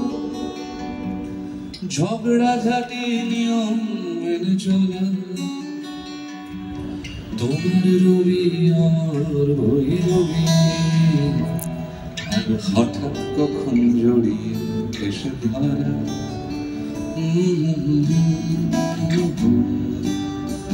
ঝগড়া ঝাঁটি নিয়ম মেনে চলা, তোমার রবি আমার রবি, আর হঠাৎ কখন জড়িয়ে এসে ধরা।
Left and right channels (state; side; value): identical; both; correlation 1.00